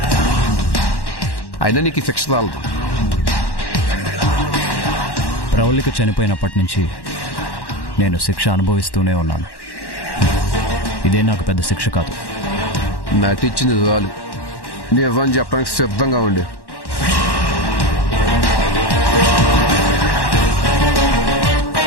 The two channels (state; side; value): late; right; 1.1 ms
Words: అయినా నీకు ఈ శిక్ష చాలదు. ప్రవళిక చనిపోయినప్పటి నుంచి నేను శిక్ష అనుభవిస్తూనే ఉన్నాను. ఇదే నాకు పెద్ద శిక్ష కాదు. నటించింది చాలు. నిజం చెప్పడానికి సిద్ధంగా ఉండే.